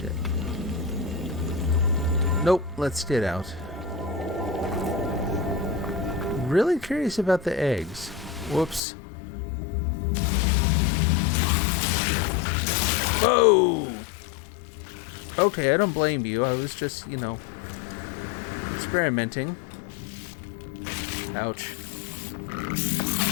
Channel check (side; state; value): right; drops out; at 8.8 s